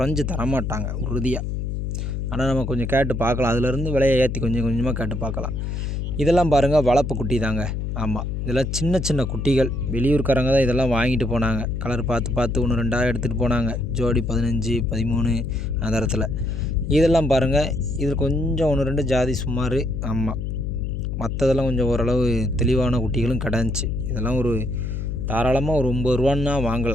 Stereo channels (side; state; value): left; noise; hum, 3 dB below the sound